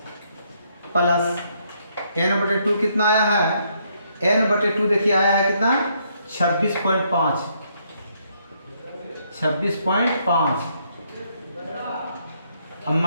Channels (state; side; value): inverted; both; correlation -0.72